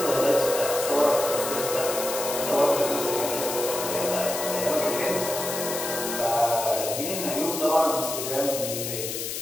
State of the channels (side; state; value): left; noise; hiss, 5 dB below the sound